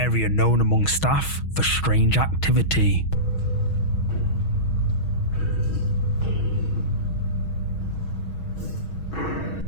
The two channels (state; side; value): late; right; 6.3 ms